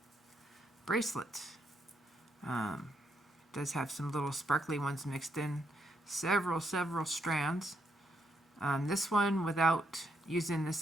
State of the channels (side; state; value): both; normal; correlation 0.77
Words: bracelet. Does have some little sparkly ones mixed in. Several strands. This one, without using this